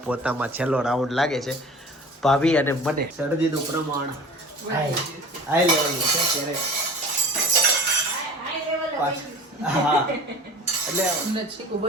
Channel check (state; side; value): normal; both; correlation 0.43